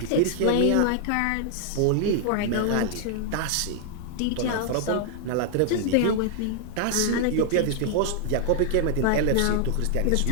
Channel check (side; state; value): both; different; correlation -0.01